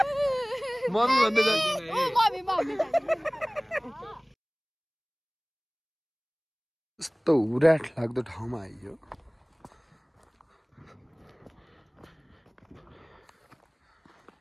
भन्दै यस्तो उराट लाग्दो ठाउँमा आइयो।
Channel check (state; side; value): identical; both; correlation 1.00